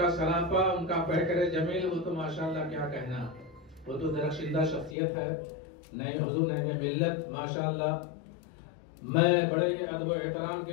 سراپا، ان کا پیکر جمیل، وہ تو ماشاءاللہ کیا کہنا، وہ تو درخشندہ شخصیت ہے۔ نہیں حضور نعیم ملت ماشاءاللہ، میں بڑے ادب و احترام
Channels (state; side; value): drops out; right; at 5.0 s